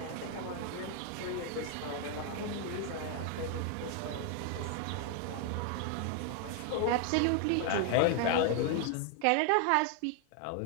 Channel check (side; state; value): both; different; correlation 0.00